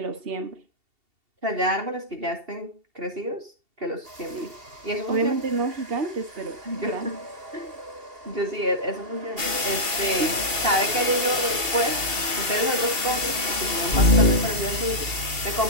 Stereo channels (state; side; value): late; left; 2.7 ms